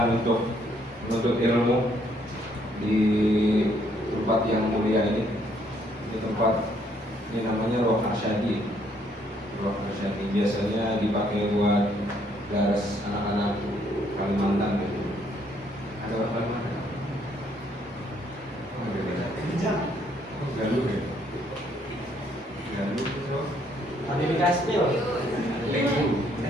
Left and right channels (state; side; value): normal; both; correlation 0.68